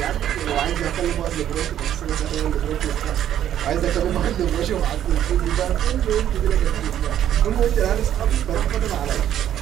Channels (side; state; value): left; quieter; 10.9 dB